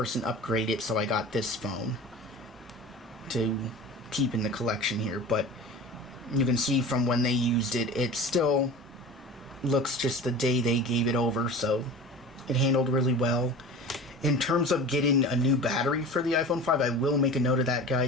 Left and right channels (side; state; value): both; normal; correlation 0.36